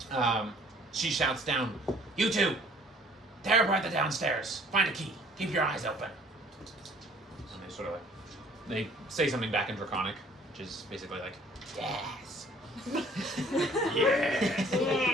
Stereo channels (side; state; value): both; normal; correlation 0.56